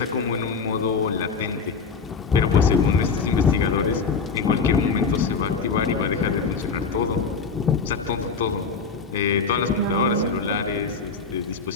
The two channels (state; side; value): quieter; right; 5.1 dB